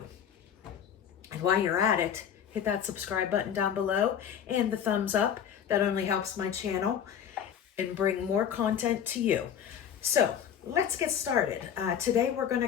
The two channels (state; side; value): quieter; right; 8.7 dB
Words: And while you're at it, hit that subscribe button down below and the thumbs up. That only helps my channel and bring more content to you. So let's get started. Today we're going to